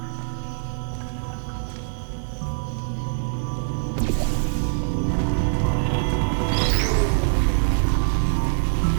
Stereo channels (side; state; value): left; silent; digital silence